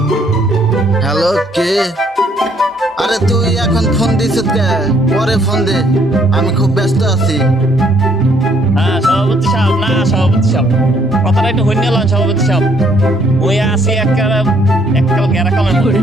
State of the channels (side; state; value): both; normal; correlation 0.66